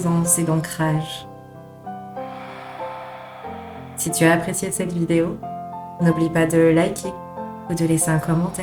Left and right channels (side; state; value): both; identical; correlation 1.00